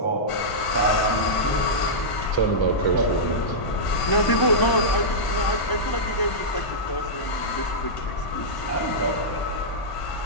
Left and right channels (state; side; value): late; right; 1.0 ms